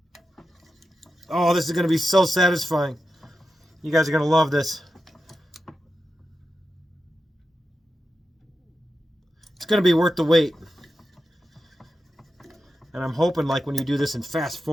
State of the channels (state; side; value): normal; both; correlation 0.91